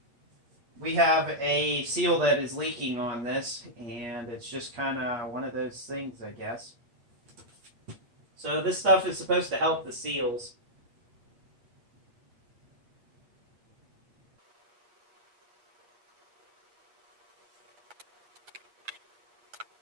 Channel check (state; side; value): late; left; 8.5 ms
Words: we have a seal that is leaking on this, and it's just kind of one of those things, I guess. So this stuff is supposed to help the seals.